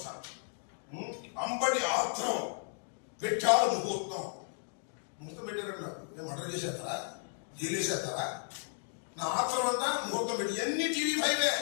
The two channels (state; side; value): silent; right; digital silence